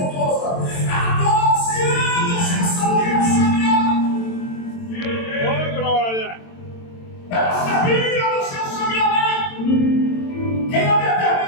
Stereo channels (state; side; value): late; right; 22 ms